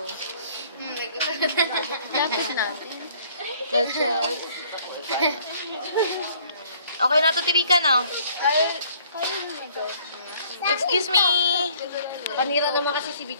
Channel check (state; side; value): inverted; both; correlation -0.59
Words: Lapit natin. That's it. Okay na to, Tirika, no? Excuse me! Kanira naman kasi si